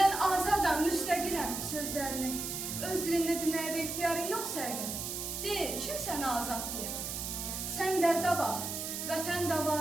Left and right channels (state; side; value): noise; right; hiss, 4 dB below the sound